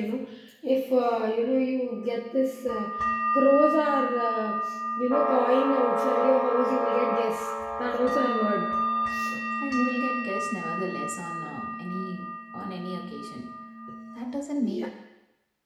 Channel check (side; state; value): both; identical; correlation 1.00